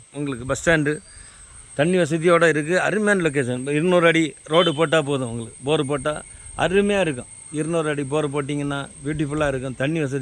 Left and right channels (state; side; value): identical; both; correlation 1.00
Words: உங்களுக்கு, பஸ் ஸ்டாண்டு, தண்ணி வசதியோடு இருக்குது. அருமையான லொக்கேஷன். 200 அடி ரோடு போட்டால் போதும். உங்களுக்கு போர் போட்டால் அருமையாக இருக்கும். 200 அடி போர் போட்டிங்கன்னா பியூட்டிஃபுல்லாக இருக்கும். தண்ணி